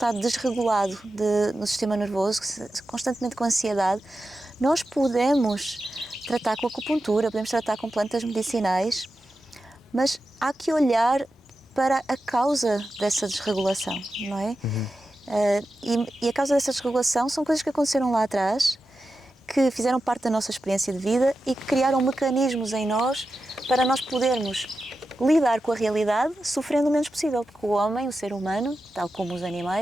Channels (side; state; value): both; normal; correlation 0.91